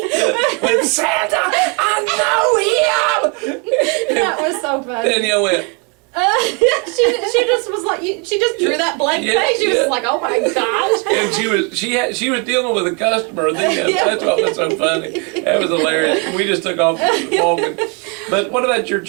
With Santa, I know him! That was so funny. Danielle went, she just was like, she just drew that blank face. She was like, oh my gosh. And she was dealing with a customer. That's what was so funny. That was hilarious. We just took off walking. But what about your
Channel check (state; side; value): quieter; left; 34.0 dB